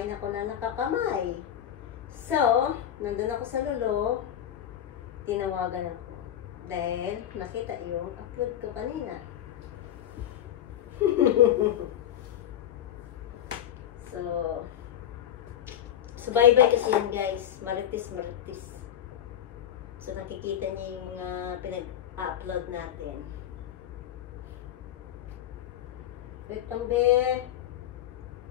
ako na nakakamay. So, nandun ako sa lolo, tinawagan ako. Dahil nakita yung upload ko kanina. So bye-bye kasi yan guys. Maritis. So, nakikita niyo yung pinag-upload natin. Wait lang, be.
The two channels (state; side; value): quieter; right; 10.7 dB